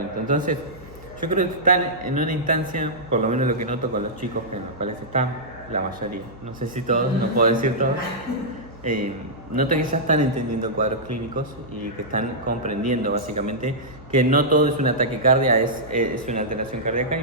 Entonces, yo creo que están en una instancia, por lo menos lo que noto con los chicos en los cuales están, la mayoría, no sé si todos, no puedo decir todos, noto que ya están entendiendo cuadros clínicos y que están comprendiendo básicamente que no todo es una taquicardia, es una alteración cardíaca y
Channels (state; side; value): normal; both; correlation -0.12